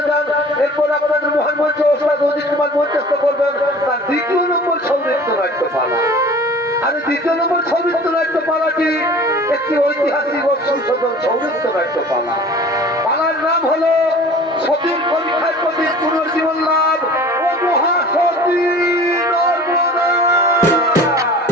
যান। এরপর আপনাদের মহান মঞ্চ ওস্তাদ অজিত কুমার মঞ্চস্থ করবেন তার দ্বিতীয় নম্বর সৌনৃত্য নাট্যপালা। আর দ্বিতীয় নম্বর সৌনৃত্য নাট্যপালাটি একটি ঐতিহাসিক ও সংশোধন সৌনৃত্য নাট্যপালা। পালার নাম হলো সতীর পরীক্ষার প্রতি পুনর্জীবন লাভ ও মহাসতী নর্মদা।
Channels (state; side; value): normal; both; correlation 0.44